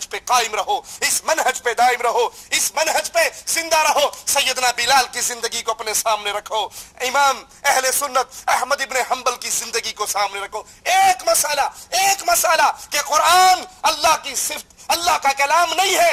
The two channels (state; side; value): identical; both; correlation 1.00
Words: پہ قائم رہو، اس منہج پہ دائم رہو، اس منہج پہ زندہ رہو۔ سیدنا بلال کی زندگی کو اپنے سامنے رکھو، امام اہل سنت احمد ابن حنبل کی زندگی کو سامنے رکھو۔ ایک مسئلہ کہ قرآن اللہ کی صفت، اللہ کا کلام نہیں